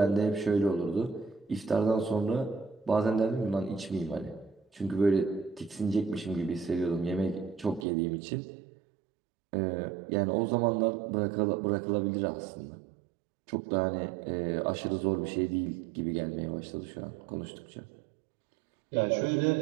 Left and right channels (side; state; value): left; drops out; at 7.9 s